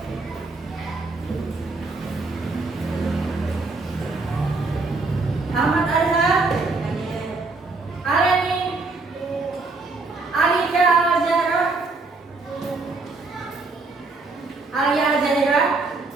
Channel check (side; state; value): left; quieter; 3.6 dB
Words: Ahmad Arza, Aleni, Alika Al-Zahra, Alia Al-Zahira,